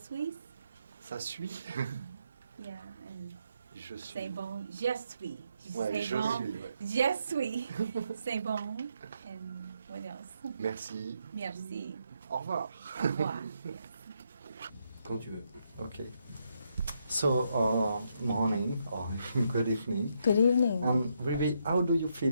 Ça suit. Yeah, and Je suis. c'est bon. Je suis. Ouais, C'est je bon. suis. Ouais. Je suis. C'est bon. And What else? Merci. Merci. Au revoir. Au revoir. Quand tu veux. Okay. So, morning or good evening. Good evening. Rebbie, how do you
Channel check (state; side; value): inverted; both; correlation -0.78